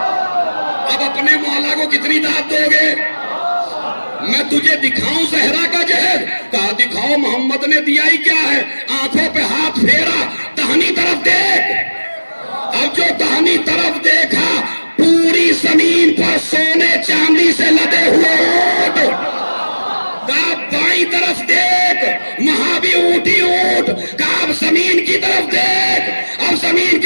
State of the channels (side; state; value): both; inverted; correlation -1.00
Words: اب اپنے مولا کو کتنی داد دو گے؟ میں تجھے دکھاؤں زہرا کا جہیز؟ کہا دکھاؤ، محمد نے دیا ہی کیا ہے؟ آنکھوں پہ ہاتھ پھیرا، دہنی طرف دیکھ۔ اب جو دہنی طرف دیکھا پوری زمین پر سونے چاندی سے لدے ہوئے اونٹ۔ کہا بائیں طرف دیکھ، وہاں بھی اونٹی اونٹ۔ کہا اب زمین کی طرف دیکھ، اب زمین